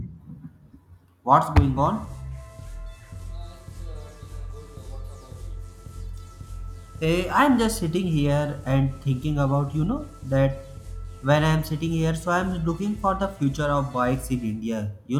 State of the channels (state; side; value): identical; both; correlation 1.00